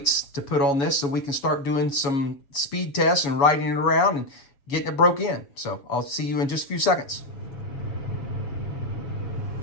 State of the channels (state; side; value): late; right; 7.2 ms